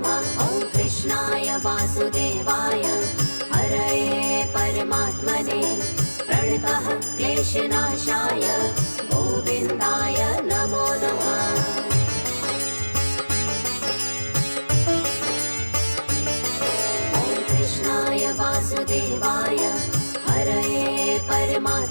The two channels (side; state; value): both; inverted; correlation -1.00